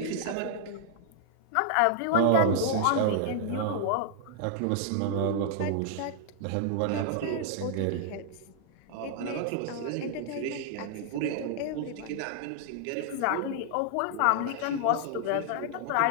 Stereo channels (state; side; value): different; both; correlation -0.01